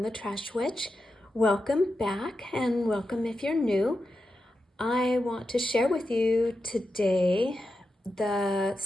the Trash Witch. Welcome back and welcome if you're new. I want to share with you today the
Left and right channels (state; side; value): normal; both; correlation 0.89